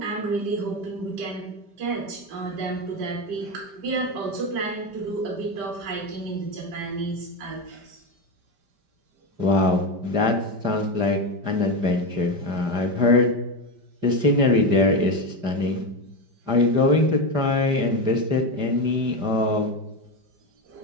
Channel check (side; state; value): left; late; 5.1 ms